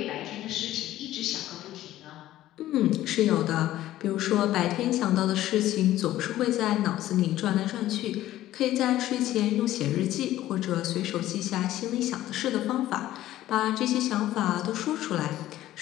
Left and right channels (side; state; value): right; quieter; 14.2 dB